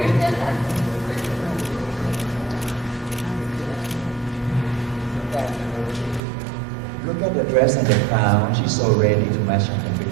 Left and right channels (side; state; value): left; drops out; at 6.2 s